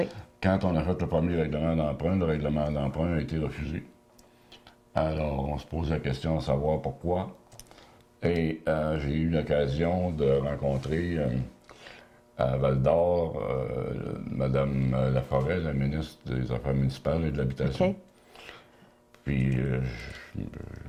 Quand on a fait le premier règlement d'emprunt, le règlement d'emprunt a été refusé. Alors, on se pose la question de savoir pourquoi. Et j'ai eu l'occasion de rencontrer à Val-d'Or Mme Laforêt, la ministre des Affaires municipales et de l'Habitation. OK. Puis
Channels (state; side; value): identical; both; correlation 1.00